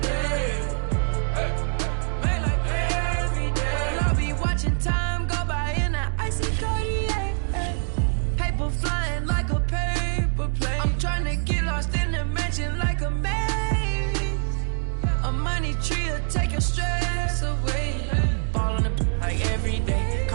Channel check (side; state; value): left; silent; digital silence